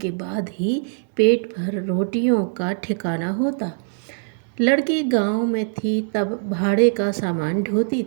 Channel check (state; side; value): silent; left; 64 dB below the other